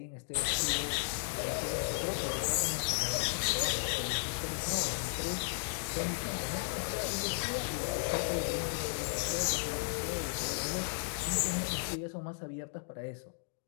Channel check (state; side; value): silent; right; digital silence